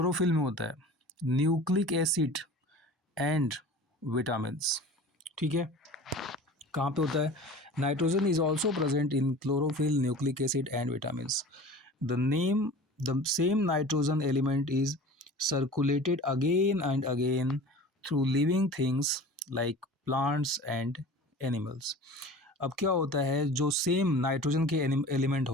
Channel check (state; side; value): normal; both; correlation 0.40